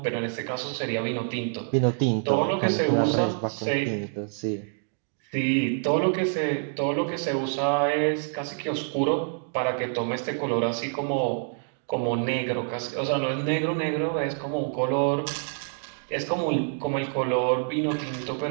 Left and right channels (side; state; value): left; silent; 60 dB below the other